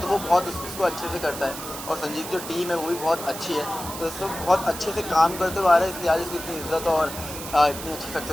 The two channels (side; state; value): right; noise; hiss, 10 dB below the sound